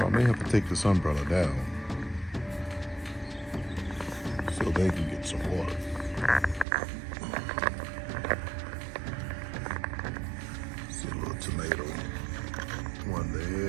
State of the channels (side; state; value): left; drops out; at 6.7 s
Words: I may have to take this umbrella down so they can get some water. See a little tomato. One